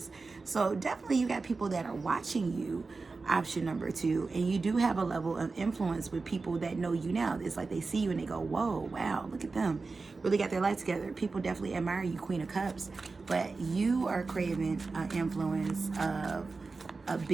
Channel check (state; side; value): quieter; left; 4.0 dB